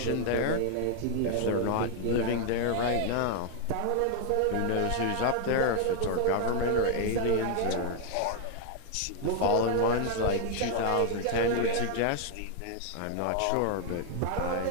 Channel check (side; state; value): both; different; correlation 0.00